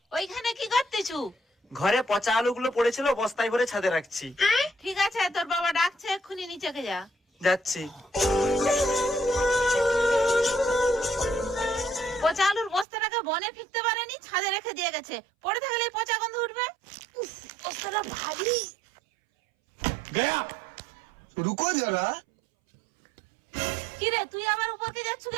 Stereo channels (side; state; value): left; drops out; at 12.9 s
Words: ওইখানে কি করতেছু? ঘরে পচা আলুগুলো পড়েছিল, বস্তায় ভরে ছাদে রাখছি। ঠিক আছে, তোর বাবা ডাকছে, এক্ষুনি নিচেকে যা। যাচ্ছি। পচা আলুর বস্তাটাকে বনে ফিরতে পারেনি, ছাদে রেখে দিয়ে গেছে। পড়ে থাকলে এই পচা গন্ধ উঠবে। বস্তাটা ভারী। गया रुको जरा। কিরে, তুই আবার উপরকে যাচ্ছ